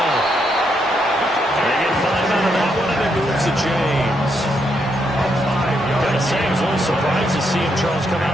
They get 5 out of that one, and it moves to James. Gotta say, I was a little surprised to see him, Charles, come out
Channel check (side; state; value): both; normal; correlation 0.78